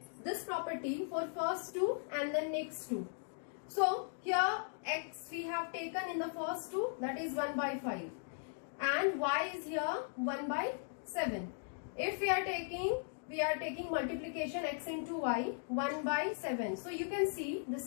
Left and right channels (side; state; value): right; silent; digital silence